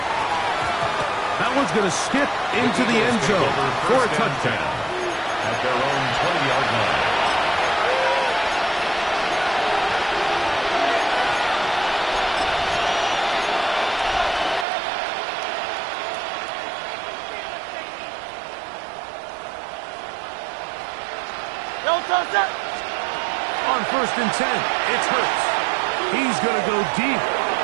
That one's going to skip into the end zone for a touchdown. At their own 20-yard line. On 1st and 10, it's Hurts. He's going to go deep,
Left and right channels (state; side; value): drops out; left; at 14.7 s